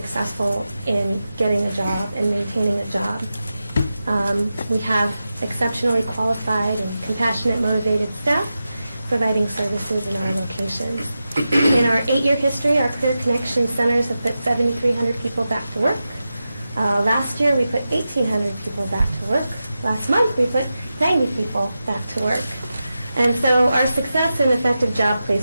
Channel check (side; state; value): both; inverted; correlation -0.92